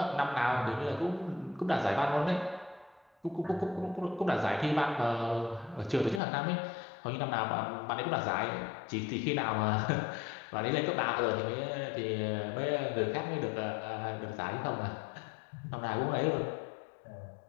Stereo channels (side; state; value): right; drops out; at 6.2 s